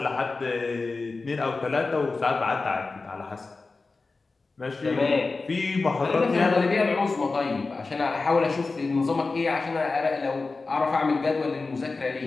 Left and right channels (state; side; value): quieter; right; 3.8 dB